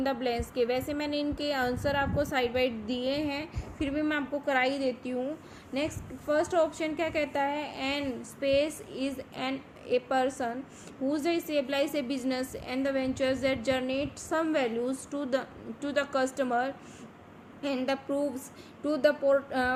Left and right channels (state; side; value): identical; both; correlation 1.00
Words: द ब्लैंक्स के। वैसे मैंने इनके आंसर आपको साइड बाइड दिए हैं, फिर भी मैं आपको करा ही देती हूँ। नेक्स्ट फर्स्ट ऑप्शन क्या कहता है, an space is an a person whose stabilize a business and the ventures that generate some values to the customer and the proves to the